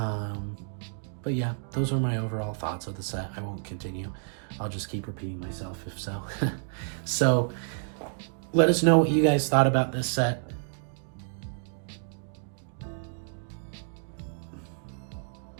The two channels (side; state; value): left; silent; digital silence